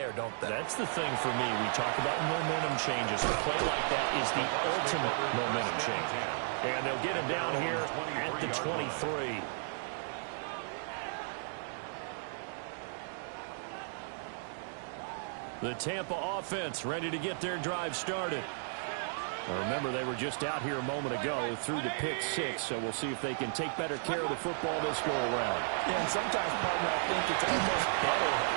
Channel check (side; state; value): left; silent; digital silence